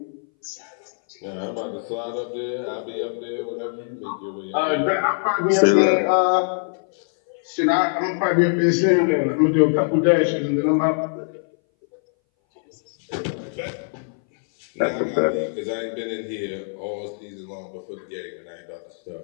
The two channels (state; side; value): silent; right; 60 dB below the other